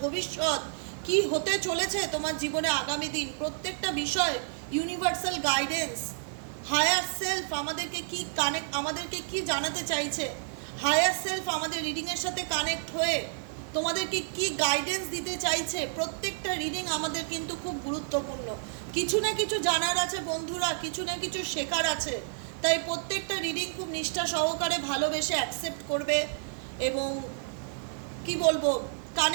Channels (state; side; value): silent; left; digital silence